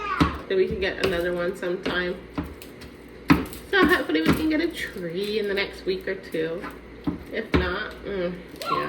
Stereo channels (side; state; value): both; identical; correlation 1.00